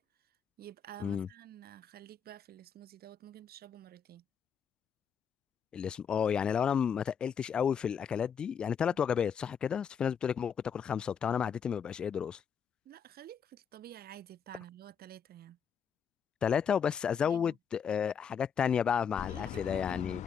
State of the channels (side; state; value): right; quieter; 7.3 dB